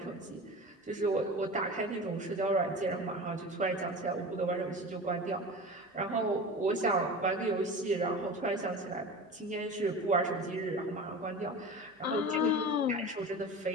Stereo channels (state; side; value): normal; both; correlation 0.32